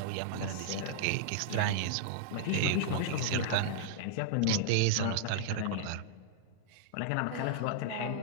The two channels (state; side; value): different; both; correlation -0.01